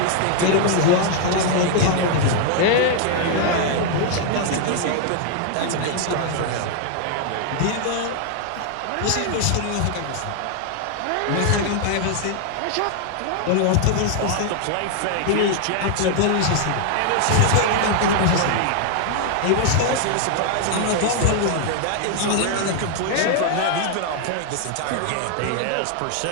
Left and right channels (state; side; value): different; both; correlation 0.00